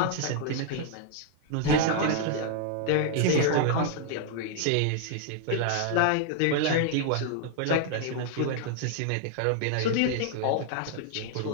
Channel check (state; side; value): different; both; correlation 0.00